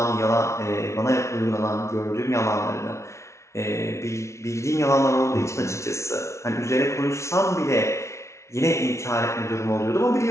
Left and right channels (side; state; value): right; late; 0.13 ms